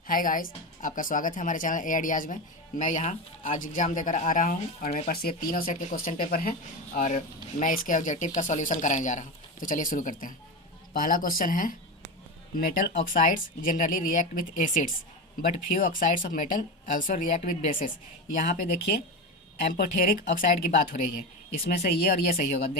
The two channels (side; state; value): both; normal; correlation 0.20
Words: Hi guys, आपका स्वागत है हमारे चैनल ए आइडियाज़ में। मैं यहाँ आज एग्ज़ाम देकर आ रहा हूँ और मेरे पास ये तीनों सेट के क्वेश्चन पेपर हैं और मैं इसके ऑब्जेक्टिव का सॉल्यूशन कराने जा रहा हूँ। तो चलिए शुरू करते हैं। पहला क्वेश्चन है, metal oxides generally react with acids but few oxides of metal also react with basis. यहाँ पे देखिए एम्पोथेरिक ऑक्साइड की बात हो रही है। इसमें से ये और ये सही होगा।